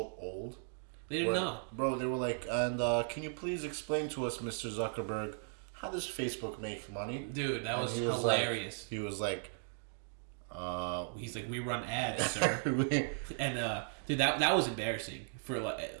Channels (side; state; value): left; silent; digital silence